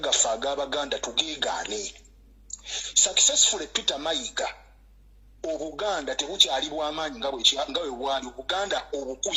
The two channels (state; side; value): identical; both; correlation 1.00